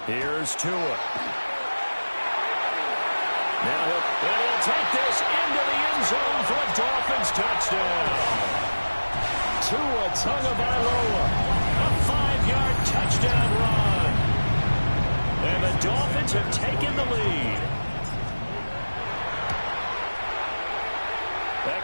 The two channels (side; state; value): both; inverted; correlation -1.00